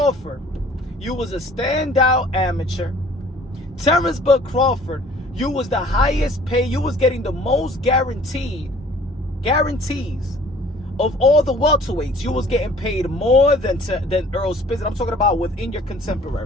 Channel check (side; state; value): both; normal; correlation 0.52